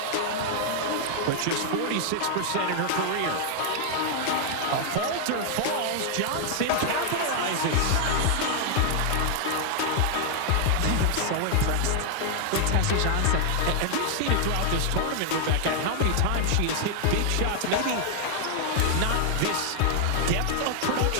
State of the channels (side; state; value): both; different; correlation 0.00